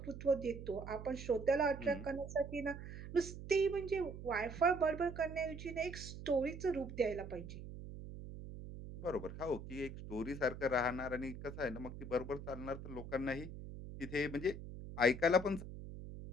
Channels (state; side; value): noise; right; hum, 10 dB below the sound